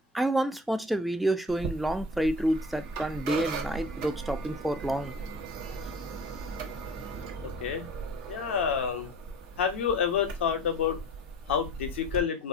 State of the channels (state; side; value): normal; both; correlation 0.43